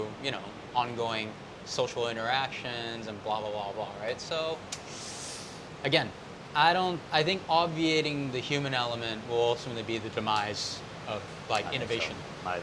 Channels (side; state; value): both; identical; correlation 1.00